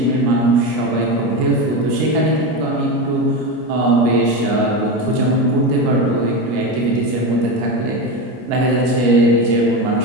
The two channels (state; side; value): late; left; 25 ms